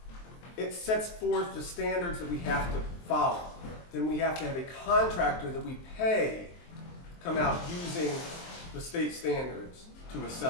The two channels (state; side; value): late; right; 23 ms